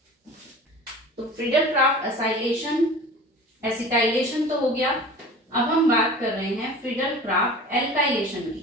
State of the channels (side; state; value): both; normal; correlation 0.39